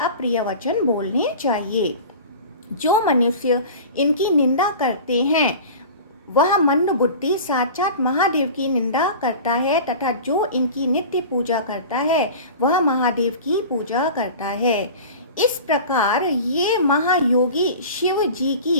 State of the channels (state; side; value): inverted; both; correlation -0.37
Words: अप्रिय वचन बोलने चाहिए। जो मनुष्य इनकी निंदा करते हैं वह मंद बुद्धि साक्षात महादेव की निंदा करता है तथा जो इनकी नित्य पूजा करता है वह महादेव की पूजा करता है। इस प्रकार ये महायोगी शिव जी की